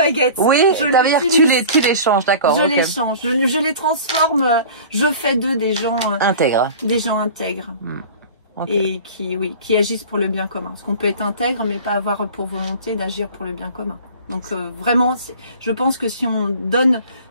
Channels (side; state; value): both; inverted; correlation -0.41